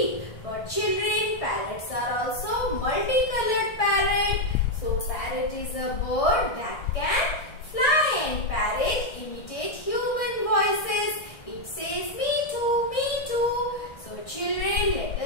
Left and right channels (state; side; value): late; right; 1.6 ms